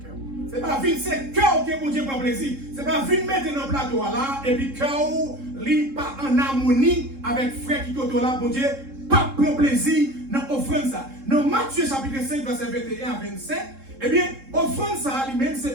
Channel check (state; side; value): late; left; 3.7 ms